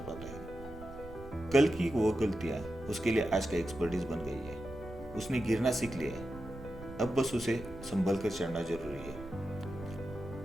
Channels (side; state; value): right; noise; rumble, 15 dB below the sound